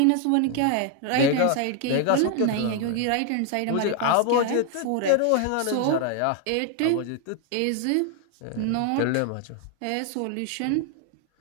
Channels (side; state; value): both; different; correlation 0.00